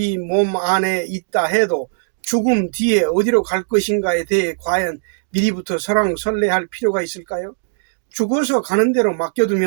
몸 안에 있다 해도 죽음 뒤에 어디로 갈 것인가에 대해 과연 미리부터 설왕설래할 필요가 있을까요? 죽어서 가는 대로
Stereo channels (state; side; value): silent; left; digital silence